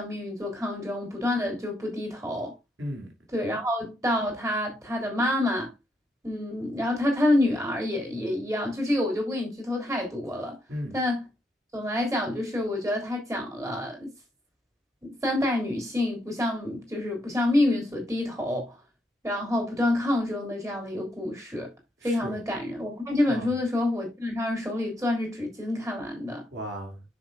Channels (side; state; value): both; normal; correlation 0.78